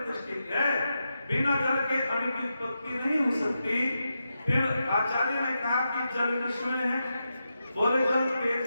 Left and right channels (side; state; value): both; inverted; correlation -0.87